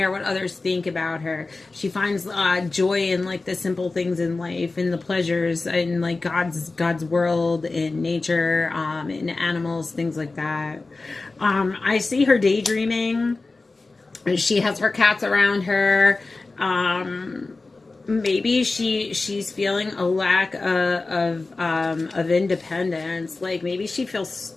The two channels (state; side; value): quieter; right; 3.5 dB